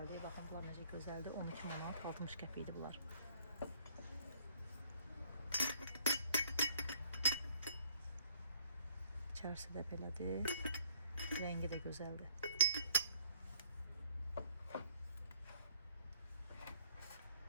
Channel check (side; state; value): both; inverted; correlation -0.61